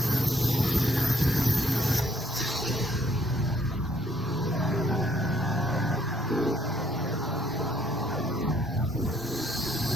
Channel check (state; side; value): normal; both; correlation 0.66